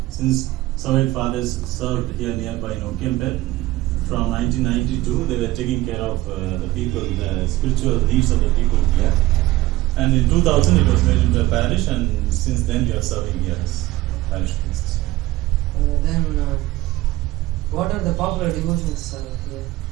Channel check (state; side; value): quieter; left; 17.6 dB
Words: since Servant Fathers served here nearby in Okempet, from 1992 they were taking care of the people, the spiritual needs of the people here. And in 2000 it was made into a parish, and since then we are serving here as parish priests. Then, what are the popular devotions here?